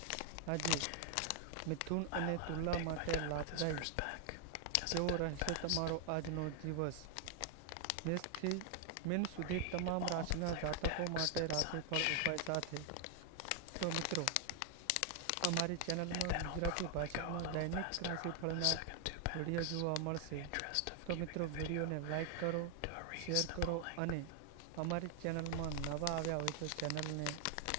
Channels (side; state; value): both; different; correlation 0.00